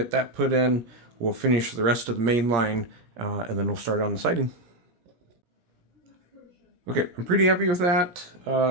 that put in. We'll finish the rest of the main line, and then we'll start on the siding. Okay, I'm pretty happy with that.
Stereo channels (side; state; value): left; late; 17 ms